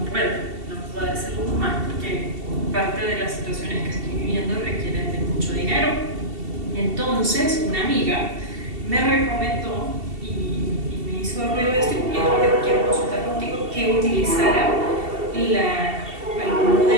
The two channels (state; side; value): late; left; 2.7 ms